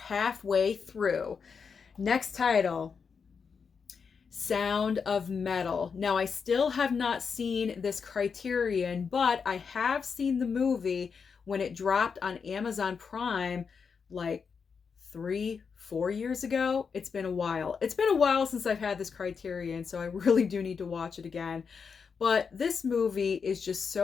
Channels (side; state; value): right; quieter; 5.9 dB